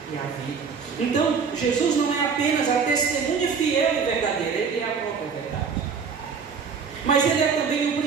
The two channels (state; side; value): quieter; left; 5.9 dB